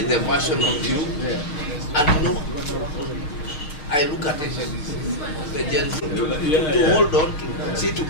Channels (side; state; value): right; late; 6.6 ms